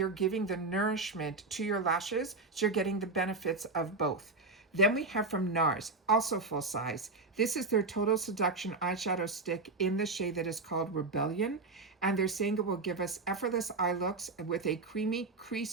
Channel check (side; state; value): left; quieter; 3.6 dB